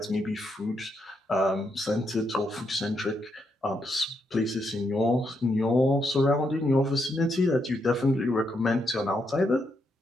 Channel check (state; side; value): normal; both; correlation 0.79